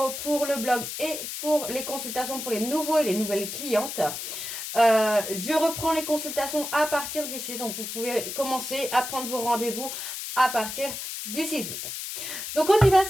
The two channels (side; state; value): left; noise; hiss, 6 dB below the sound